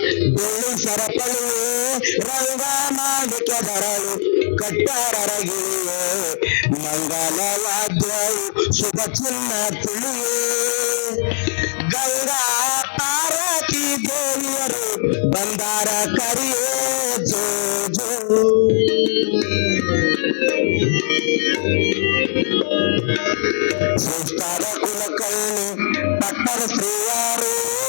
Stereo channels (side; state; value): right; silent; 66 dB below the other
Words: ಬೆಳ್ಳಿ ಸರಪಳಿಯೇ ರಂಗ ಮಾಡಿಕ ಬರಳು ಕಟ್ಟಾರಗಿಳಿಯೇ ಮಂಗಲವಾದ್ಯವು ಶುಭ ಚಿನ್ನ ತಿಳಿಯೇ ಗಂಗಾ ಪಾರ್ವತಿ ದೇವಿಯರು ಬಂದಾರ ಕರಿಯೇ ಜೋ ಜೋ ಶ್ರೇಷ್ಠರ ಕುಲಕರ್ಣಿ ಪಟ್ಟಣ ಶ್ರೀಯಾರು